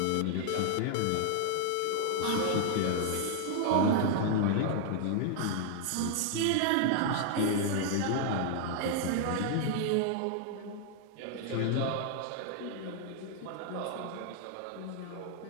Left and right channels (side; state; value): both; different; correlation 0.00